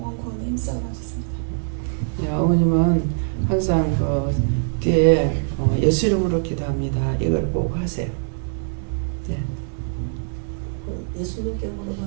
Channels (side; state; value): left; silent; 63 dB below the other